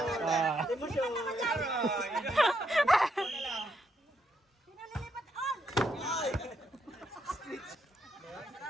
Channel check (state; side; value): normal; both; correlation 0.77